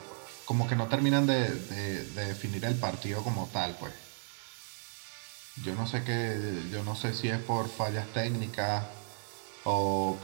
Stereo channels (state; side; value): silent; left; digital silence